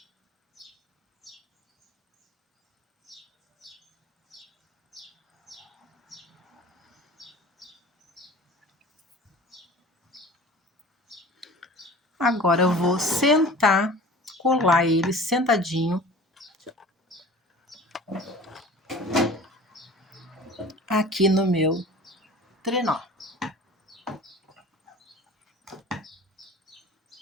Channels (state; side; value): normal; both; correlation 0.41